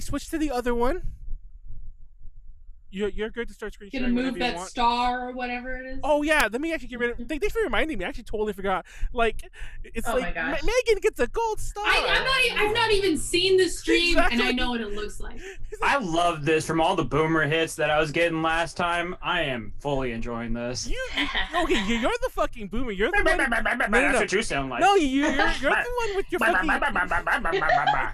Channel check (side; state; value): both; identical; correlation 1.00